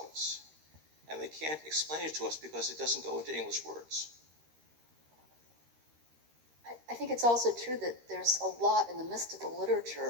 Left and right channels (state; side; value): late; left; 13 ms